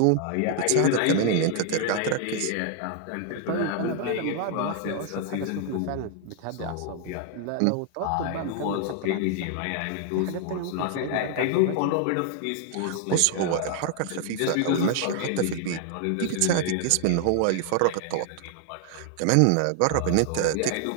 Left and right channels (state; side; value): different; both; correlation 0.00